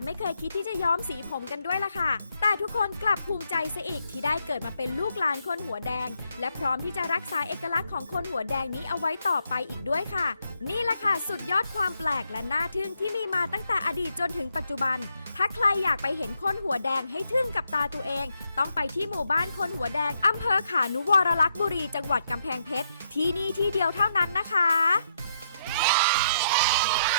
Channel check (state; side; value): inverted; both; correlation -0.77